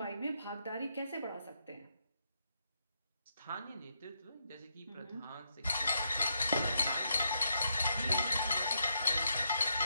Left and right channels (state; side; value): inverted; both; correlation -0.80